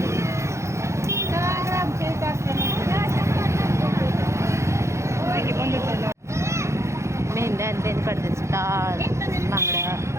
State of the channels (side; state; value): left; late; 0.14 ms